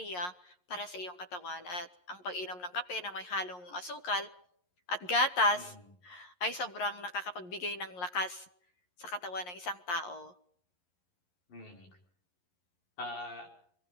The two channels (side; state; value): right; late; 11 ms